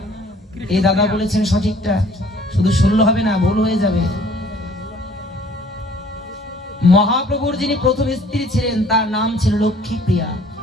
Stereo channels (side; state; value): both; normal; correlation 0.55